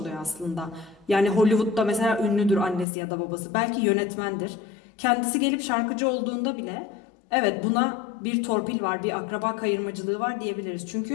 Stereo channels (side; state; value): right; drops out; at 2.9 s